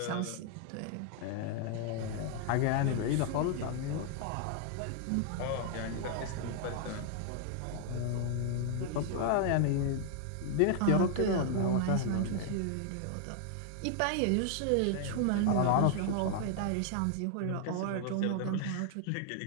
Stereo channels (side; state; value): both; different; correlation 0.00